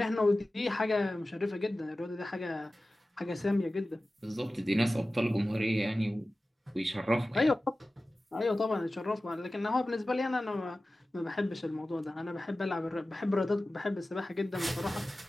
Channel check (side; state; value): both; normal; correlation 0.96